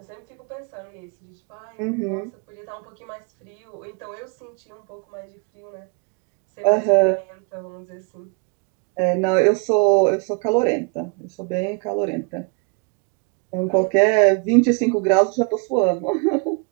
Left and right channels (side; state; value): left; quieter; 33.5 dB